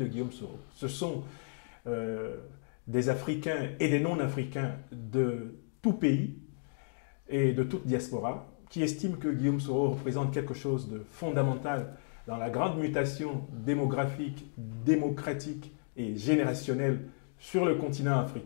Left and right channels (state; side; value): silent; right; digital silence